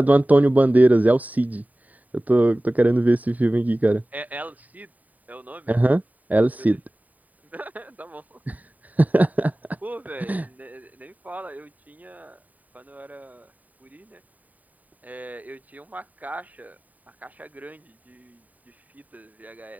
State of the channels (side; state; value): left; late; 0.075 ms